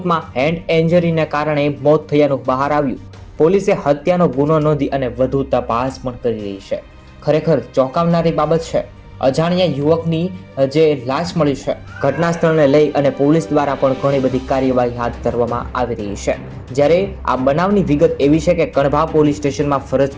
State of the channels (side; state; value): both; identical; correlation 1.00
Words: હેન્ડ ઇન્જરીને કારણે મોત થયાનું બહાર આવ્યું. પોલીસે હત્યાનો ગુનો નોંધી અને વધુ તપાસ પણ કરી રહી છે. ખરેખર ચોંકાવનારી બાબત છે. અજાણ્યા યુવકની જે લાશ મળી છે, ઘટના સ્થળને લઈ અને પોલીસ દ્વારા પણ ઘણી બધી કાર્યવાહી હાથ ધરવામાં આવી રહી છે. જ્યારે આ બનાવની વિગત એવી છે કે કણભા પોલીસ સ્ટેશનમાં ફરજ